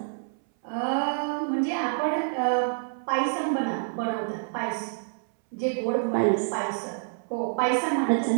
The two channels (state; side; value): silent; left; 58 dB below the other